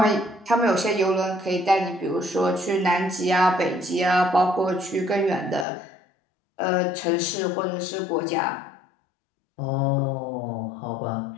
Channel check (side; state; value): right; drops out; at 5.7 s